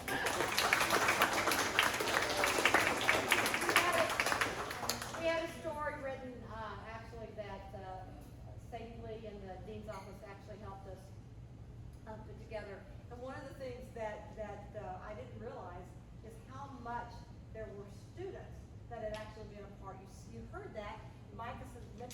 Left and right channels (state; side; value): identical; both; correlation 1.00